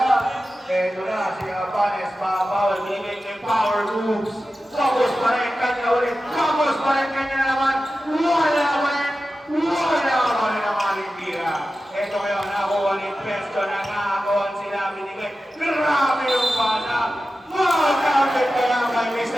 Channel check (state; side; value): normal; both; correlation 0.93